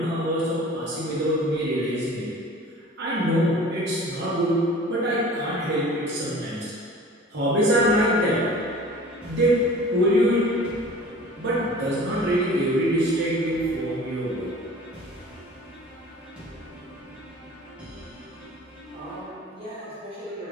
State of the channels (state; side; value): normal; both; correlation 0.44